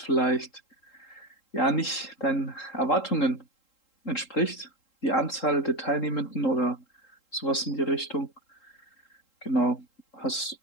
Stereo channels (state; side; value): late; right; 3.8 ms